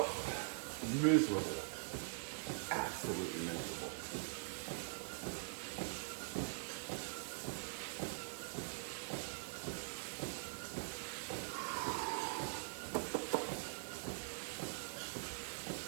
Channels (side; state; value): left; silent; digital silence